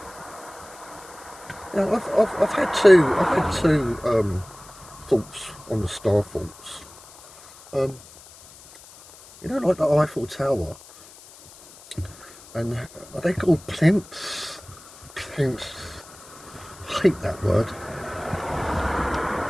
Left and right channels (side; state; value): left; noise; hiss, 21 dB below the sound